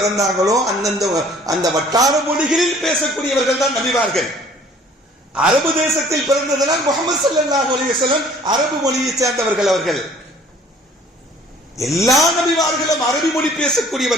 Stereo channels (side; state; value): both; normal; correlation 0.55